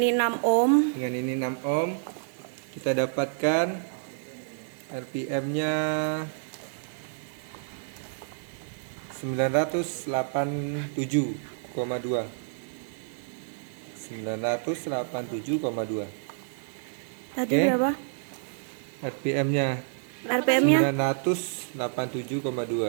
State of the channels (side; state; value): left; silent; digital silence